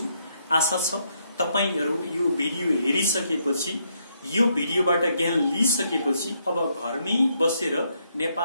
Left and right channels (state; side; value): inverted; both; correlation -0.74